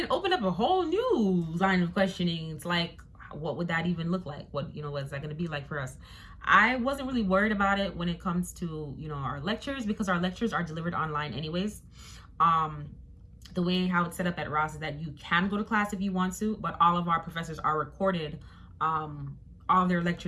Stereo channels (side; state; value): both; identical; correlation 1.00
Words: opened up a whole new line of questioning. It's like, what would that even look like? What's that going to be like for us? I wasn't really worried about it when it comes to, our lectures, because our lectures are delivered online anyways. The way how it's set up at Ross is that you can go to class if you want to, but all of our professors are recorded. All of their